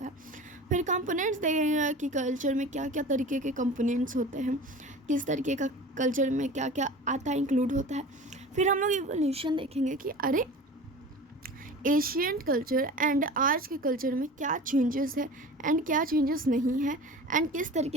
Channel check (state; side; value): normal; both; correlation 0.37